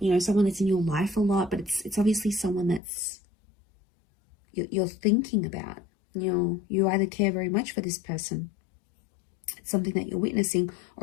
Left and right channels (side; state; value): right; drops out; at 2.8 s